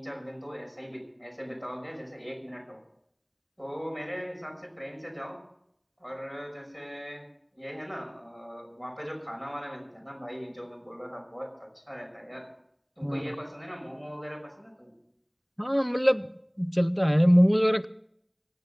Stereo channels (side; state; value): both; identical; correlation 1.00